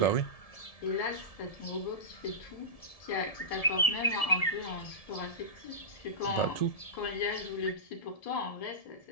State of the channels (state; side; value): late; right; 1.7 ms